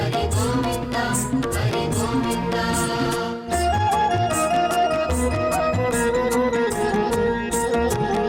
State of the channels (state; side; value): identical; both; correlation 1.00